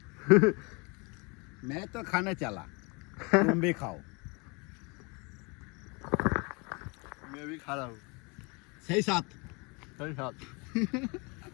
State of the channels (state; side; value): quieter; right; 29.5 dB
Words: मैं तो खाने चला, तुम भी खाओ। मैं भी खा रहा हूँ, सही साथ सही साथ।